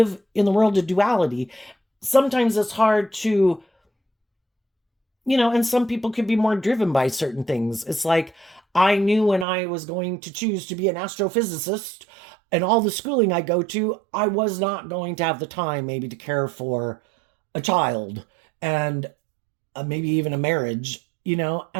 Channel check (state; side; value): drops out; left; at 9.5 s